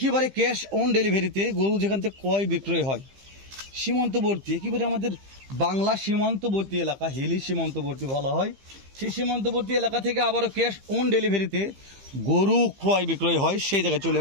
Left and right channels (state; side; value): late; left; 15 ms